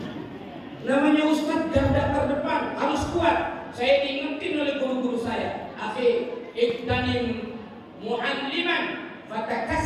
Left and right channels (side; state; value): both; identical; correlation 1.00